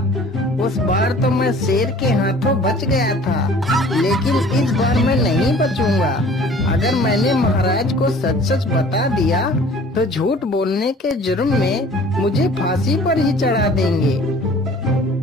उस बार तो मैं शेर के हाथों बच गया था, लेकिन इस बार मैं नहीं बचूंगा। अगर मैंने महाराज को सच सच बता दिया तो झूठ बोलने के जुर्म में मुझे फांसी पर ही चढ़ा देंगे।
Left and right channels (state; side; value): normal; both; correlation 0.49